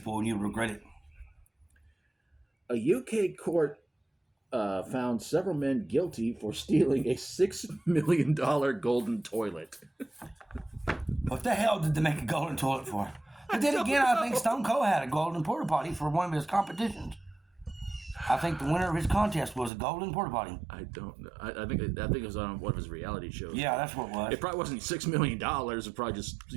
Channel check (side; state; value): left; drops out; at 19.7 s